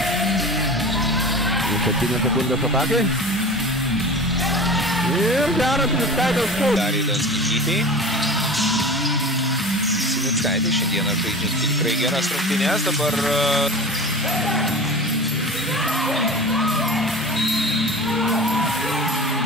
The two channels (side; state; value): both; normal; correlation 0.35